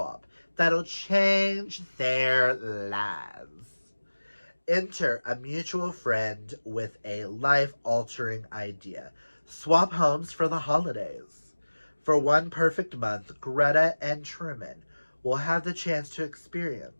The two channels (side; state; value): both; inverted; correlation -1.00